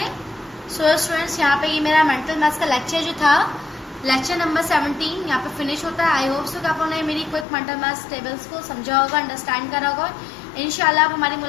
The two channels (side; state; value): right; drops out; at 7.5 s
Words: सो स्टूडेंट्स, यहाँ पे ये मेरा मेंटल मैथ्स का लेक्चर जो था लेक्चर नंबर 17 यहाँ पे फिनिश होता है। आई होप सो कि आप लोगों ने मेरी क्विक मेंटल मैथ्स टेबल्स को समझा होगा, अंडरस्टैंड करा होगा। इंशाल्लाह अब हमारी